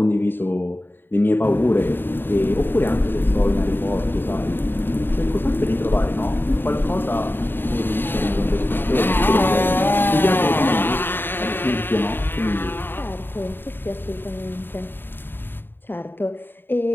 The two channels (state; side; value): late; right; 0.097 ms